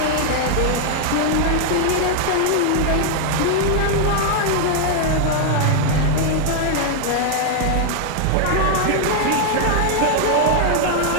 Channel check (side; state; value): both; different; correlation 0.00